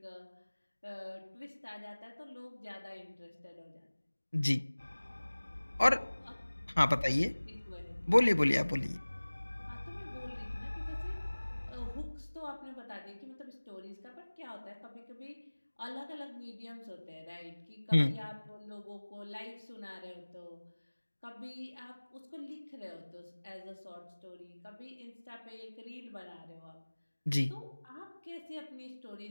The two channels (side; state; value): both; inverted; correlation -1.00